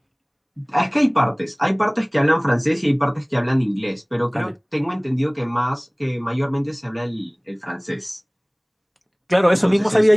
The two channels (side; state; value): both; identical; correlation 1.00